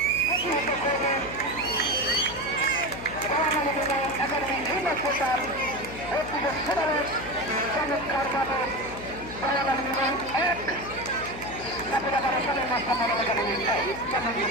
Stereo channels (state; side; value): noise; left; hum, 12 dB below the sound